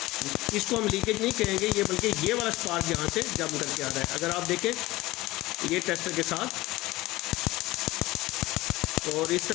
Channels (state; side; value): quieter; right; 18.9 dB